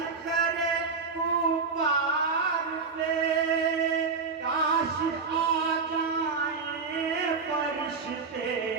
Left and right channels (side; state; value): left; quieter; 4.8 dB